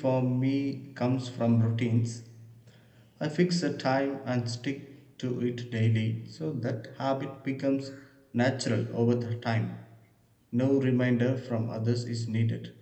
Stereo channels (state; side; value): identical; both; correlation 1.00